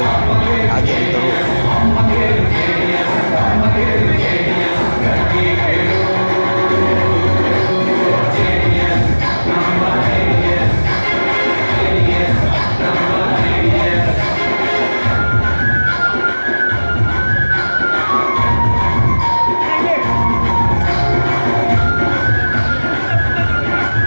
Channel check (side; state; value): both; inverted; correlation -1.00